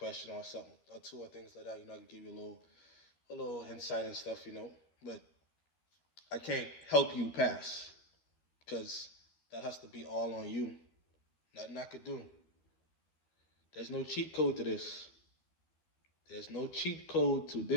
or something or two or things like that. I can give you a little insight and stuff. But I can't help you pass because that has to be all on you. Nothing I could do. There's no cheat code to this. There's no cheat code to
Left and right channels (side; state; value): right; late; 12 ms